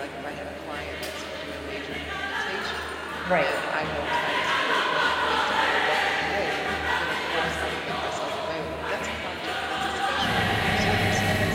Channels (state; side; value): identical; both; correlation 1.00